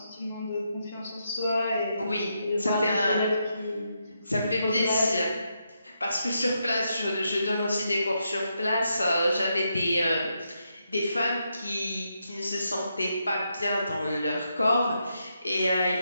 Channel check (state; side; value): inverted; both; correlation -0.82